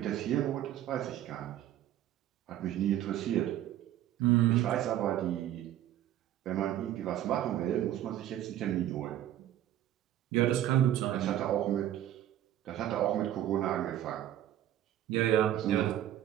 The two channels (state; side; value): quieter; left; 12.2 dB